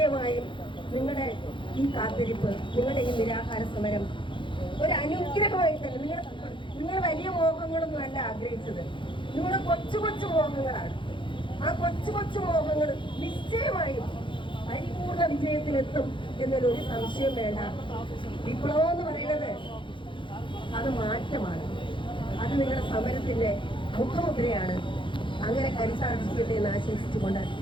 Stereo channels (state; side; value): late; right; 0.24 ms